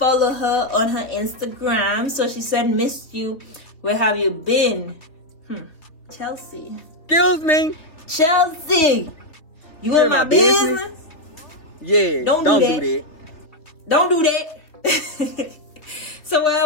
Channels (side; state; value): right; late; 3.3 ms